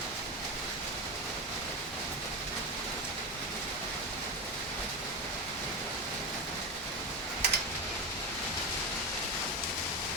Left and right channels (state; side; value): normal; both; correlation 0.17